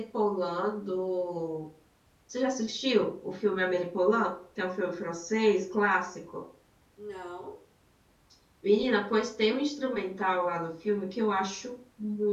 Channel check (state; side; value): identical; both; correlation 1.00